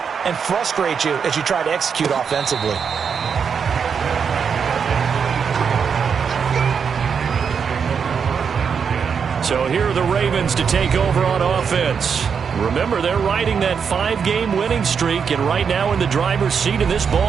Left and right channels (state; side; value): quieter; left; 6.5 dB